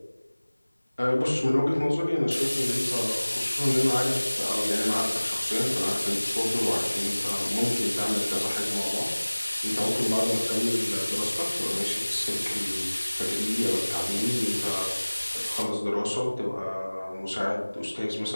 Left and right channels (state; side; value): inverted; both; correlation -1.00